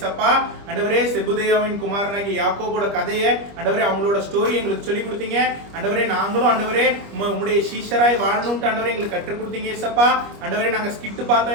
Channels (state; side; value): late; left; 25 ms